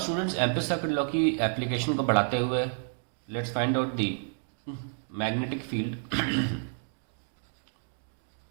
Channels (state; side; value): silent; left; 58 dB below the other